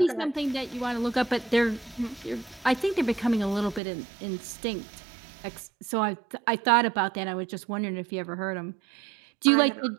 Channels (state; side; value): drops out; left; at 3.8 s